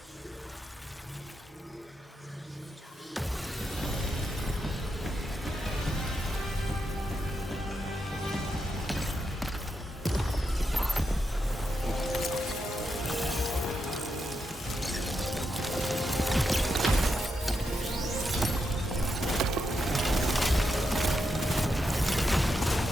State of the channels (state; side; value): normal; both; correlation 0.84